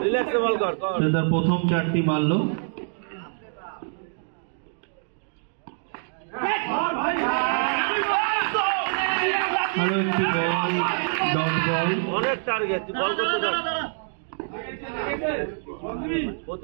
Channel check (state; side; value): silent; left; digital silence